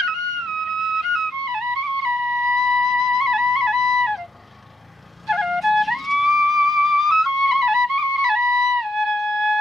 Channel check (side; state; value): both; normal; correlation 0.80